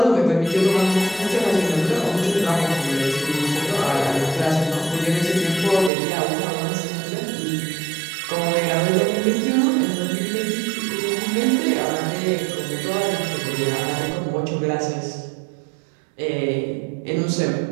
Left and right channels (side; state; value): left; drops out; at 5.9 s